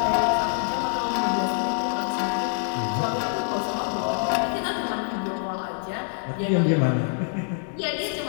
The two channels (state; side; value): silent; right; 61 dB below the other